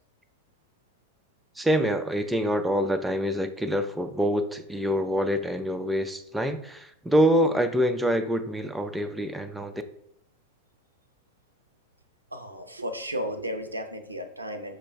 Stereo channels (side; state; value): both; normal; correlation 0.61